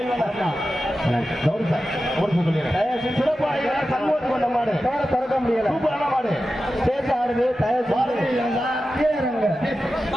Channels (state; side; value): normal; both; correlation 0.93